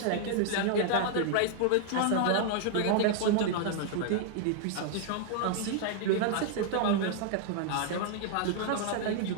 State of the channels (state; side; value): different; both; correlation -0.01